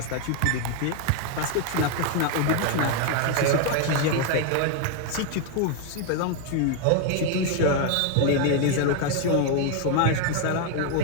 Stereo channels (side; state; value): both; different; correlation 0.00